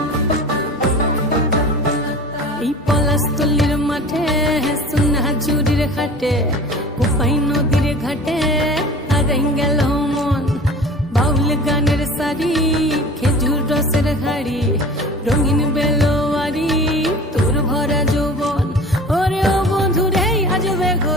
এই পলাশতলির মাঠে সোনা ঝুড়ির হাটে কোপাই নদীর ঘাটে হারাই গেল মন বাউল গানের সারি খেজুর রসের হাড়ি রঙিন বেলোয়ারি তোর ভরা যৌবন ওরে ও বন্ধুরে আজবে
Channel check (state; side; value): normal; both; correlation 0.40